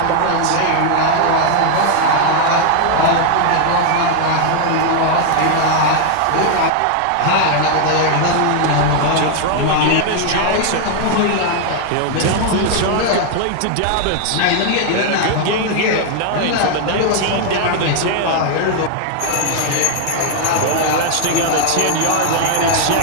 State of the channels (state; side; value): different; both; correlation 0.00